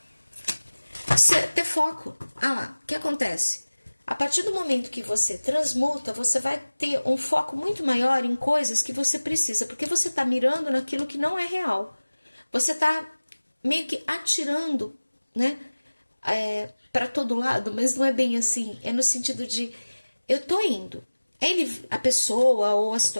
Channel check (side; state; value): both; inverted; correlation -1.00